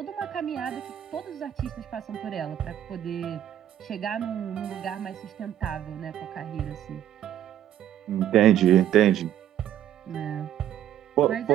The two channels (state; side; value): quieter; left; 11.1 dB